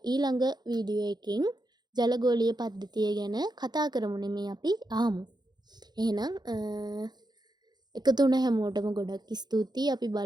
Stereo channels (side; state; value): left; late; 0.20 ms